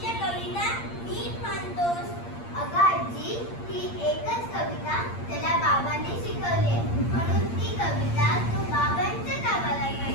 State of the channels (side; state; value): right; late; 8.7 ms